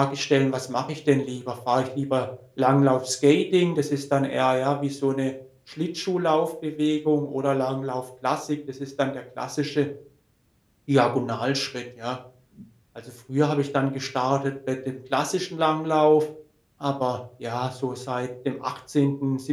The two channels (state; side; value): identical; both; correlation 1.00